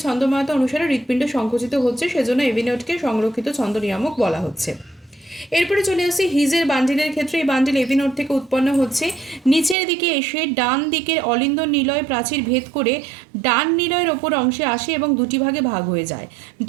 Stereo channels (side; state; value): left; drops out; at 9.8 s